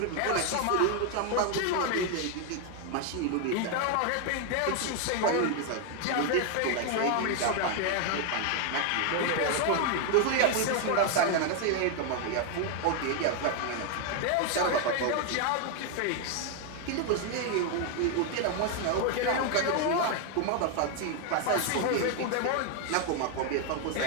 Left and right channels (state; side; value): different; both; correlation 0.01